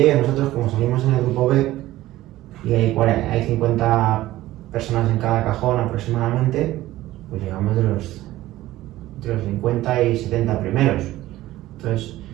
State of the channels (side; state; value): left; quieter; 15.9 dB